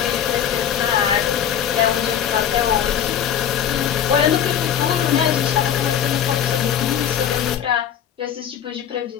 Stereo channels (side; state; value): right; quieter; 9.3 dB